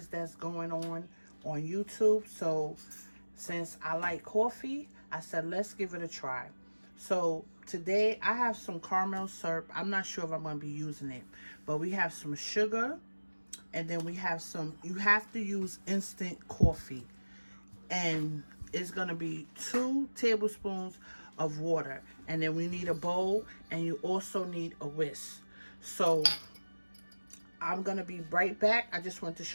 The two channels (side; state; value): both; inverted; correlation -1.00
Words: that's going on YouTube. So since I like coffee, I said let's give it a try. So today I have some caramel syrup. I'm not sure if I'm gonna be using it, but we have some sugar, and then we have some, you have to use instant coffee, and it's gonna be 2 tablespoons of water, and then we need a bowl, and you also need a whisk. So I'm gonna be right back. I just want to